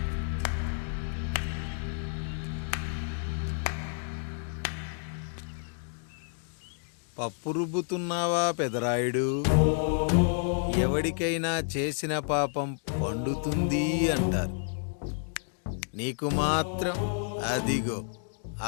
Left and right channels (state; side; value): silent; right; digital silence